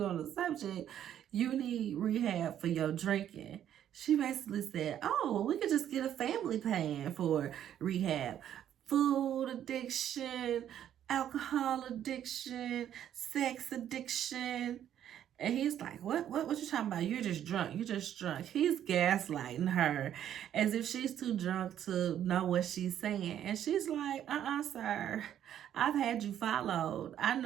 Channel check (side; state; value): left; quieter; 10.5 dB